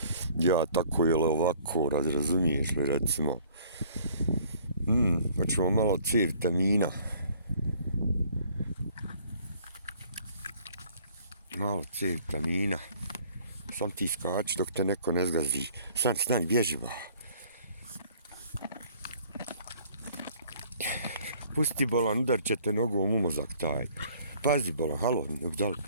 ja tako ili ovako, razumiješ li, recimo. Hoćemo malo C vitamina. Sam ti skači dok te neko ne zgazi. Stani, bježi ba. Pusti bolan, udar će te nogom u mozak taj. Pazi bolan, halo, dal.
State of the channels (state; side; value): inverted; both; correlation -0.57